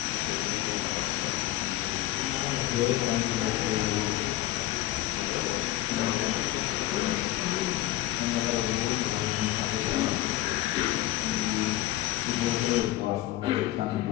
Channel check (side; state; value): right; quieter; 15.5 dB